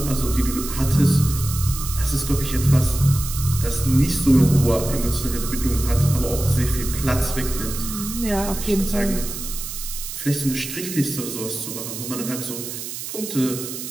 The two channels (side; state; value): right; noise; hiss, 8 dB below the sound